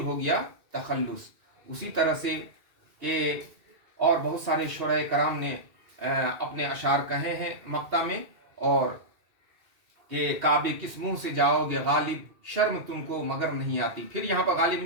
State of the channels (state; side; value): late; left; 2.6 ms